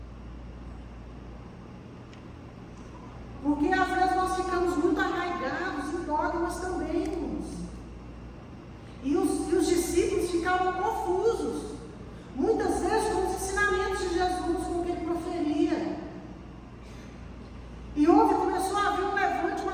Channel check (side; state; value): both; identical; correlation 1.00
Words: Porque às vezes nós ficamos muito arraigados em dogmas também, irmãos. E os discípulos ficavam confusos. Muitas vezes com os ensinamentos de Jesus, com o que ele proferia. E começou a haver um levante, uma